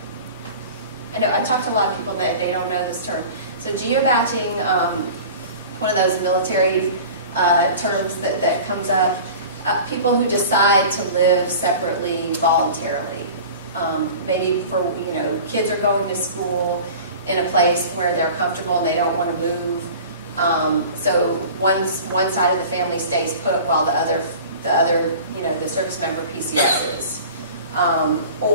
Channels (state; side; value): inverted; both; correlation -0.40